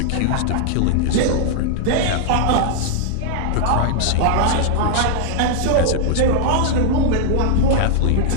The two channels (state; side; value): different; both; correlation -0.01